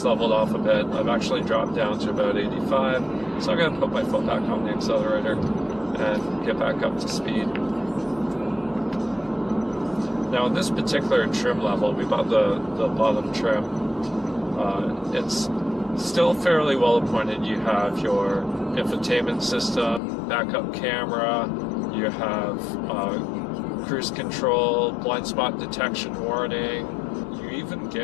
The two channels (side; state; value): right; drops out; at 20.0 s